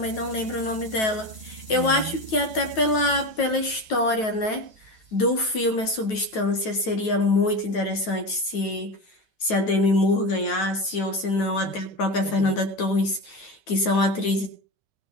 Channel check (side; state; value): right; late; 9.2 ms